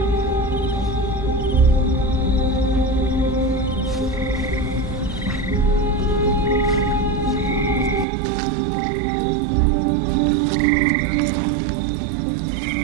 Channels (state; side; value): drops out; left; at 8.1 s